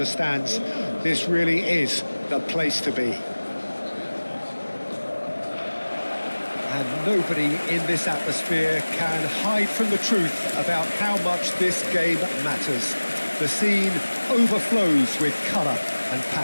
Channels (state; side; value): inverted; both; correlation -1.00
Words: stands. This really is the place to be. And nobody in this atmosphere can hide from the truth about how much this game matters. The scene overflows with colour and